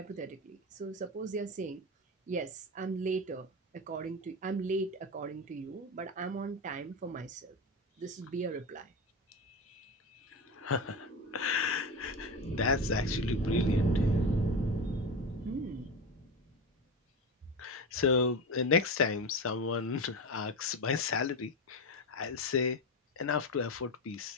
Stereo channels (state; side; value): normal; both; correlation 0.20